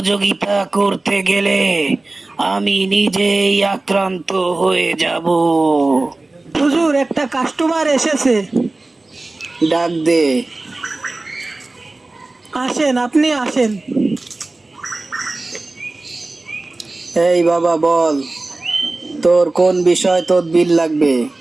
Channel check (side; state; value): left; quieter; 3.1 dB